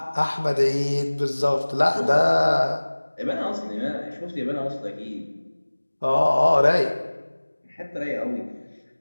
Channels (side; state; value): both; inverted; correlation -1.00